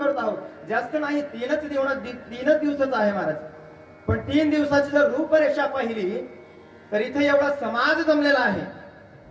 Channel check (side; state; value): both; identical; correlation 1.00